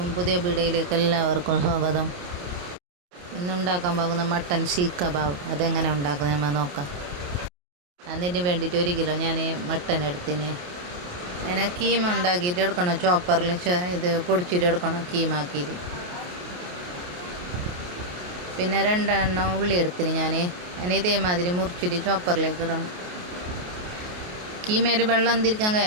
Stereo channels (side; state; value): left; late; 28 ms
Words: പുതിയ വീഡിയോയിലേക്ക് എല്ലാവർക്കും സ്വാഗതം. ഇന്നുണ്ടാക്കാൻ പോകുന്ന മട്ടൻ സീഖ് കബാബ് അതെങ്ങനെ ഉണ്ടാക്കുന്നത് നമ്മൾ നോക്കാം. അതിന് വേണ്ടിയിട്ട് 1 കിലോ ഞാൻ മട്ടൻ എടുത്തിന്. അതിനെ കീമ ഉണ്ടാക്കിയിട്ട് എടുക്കണം. ചോപ്പറിൽ ഇത് പൊടിച്ചിട്ട് എടുക്കണം കീമാക്കിയിട്ട്. പിന്നെ 2 എണ്ണം ഉള്ളി എടുത്തിന് ഞാൻ. അതിന് ഇതേമാതിരി മുറിച്ചിട്ട് ചോപ്പറിലേക്ക് ഇടണം. കീമയിൽ വെള്ളം തിരിക്കാൻ